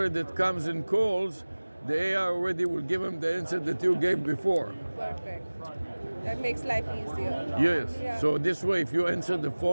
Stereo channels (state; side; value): inverted; both; correlation -1.00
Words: that comes and calls, the AI already will give him the answer that you gave before. Perfect. That makes life easier. Yes. Yeah. So this way, if you answer the